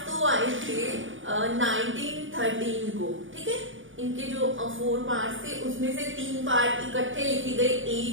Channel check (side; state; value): left; late; 0.57 ms